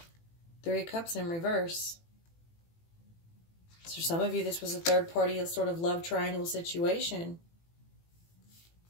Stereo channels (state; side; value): late; right; 18 ms